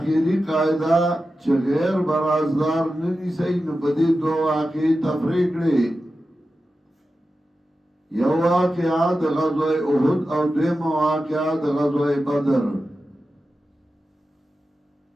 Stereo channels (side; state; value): both; normal; correlation 0.92